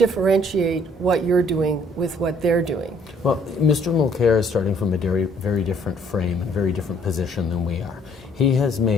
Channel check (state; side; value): normal; both; correlation 0.62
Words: what you're doing with what they're doing? Well, Mr. Mulcair is starting from a very different frame and very different position than we are. He has